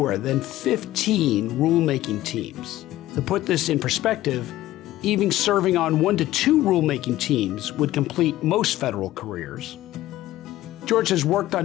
than 15 rulemaking teams. To put this in perspective, even serving on 1 to 2 rulemaking teams would complete most federal careers. George has worked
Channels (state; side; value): quieter; right; 15.3 dB